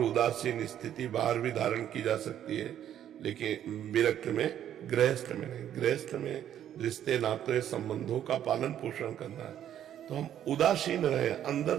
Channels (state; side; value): quieter; left; 10.6 dB